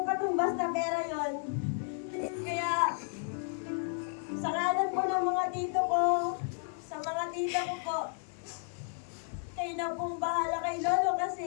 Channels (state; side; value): silent; right; 56 dB below the other